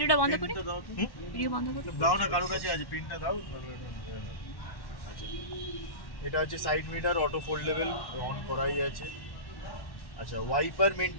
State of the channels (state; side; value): late; right; 1.1 ms